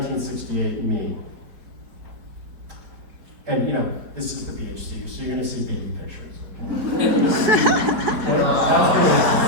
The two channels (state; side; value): late; left; 4.6 ms